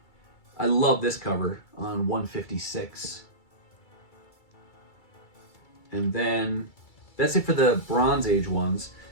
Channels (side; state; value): right; late; 2.3 ms